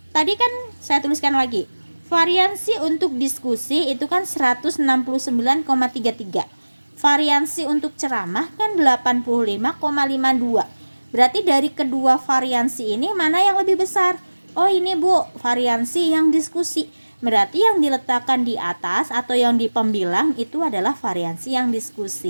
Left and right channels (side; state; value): both; inverted; correlation -1.00